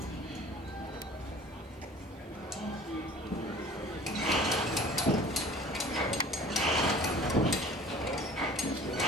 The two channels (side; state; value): both; normal; correlation 0.46